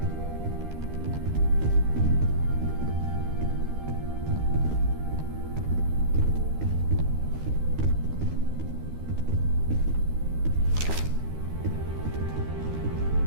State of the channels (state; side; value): late; left; 13 ms